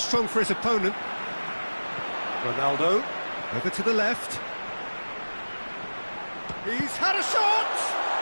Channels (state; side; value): inverted; both; correlation -1.00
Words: for his opponent. Ronaldo, over to the left. He's had a shot!